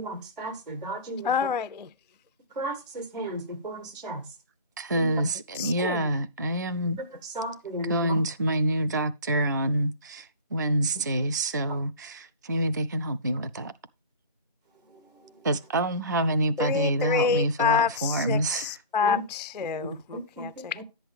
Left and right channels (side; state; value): both; inverted; correlation -0.33